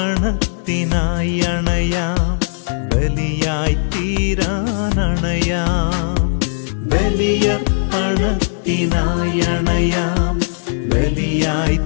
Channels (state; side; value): silent; right; digital silence